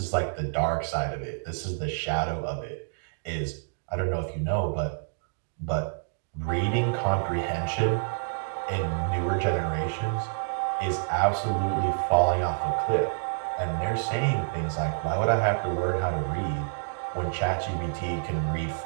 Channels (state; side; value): silent; left; digital silence